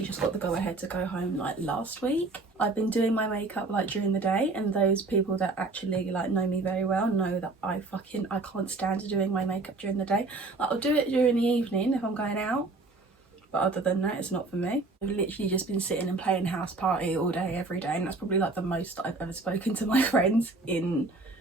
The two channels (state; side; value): quieter; left; 3.4 dB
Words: just got the go ahead to go home like last week. I've been doing my makeup like during the day, and those people that actually like know me very well know that I can't stand doing my makeup during the day. Like, I'll do it during the evening if I'm going out, but other than that, it's not for me. I've literally just been sitting and playing house party all day every day, and that's probably like the most that I've ever spoken to my friends in